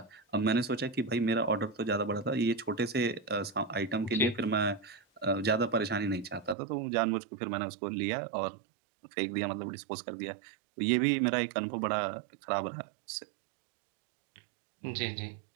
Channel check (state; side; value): drops out; left; at 6.6 s